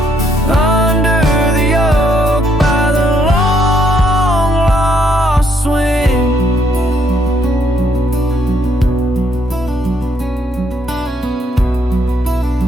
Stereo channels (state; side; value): normal; both; correlation 0.72